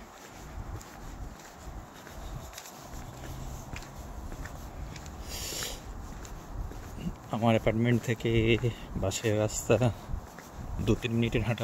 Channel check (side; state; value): both; identical; correlation 1.00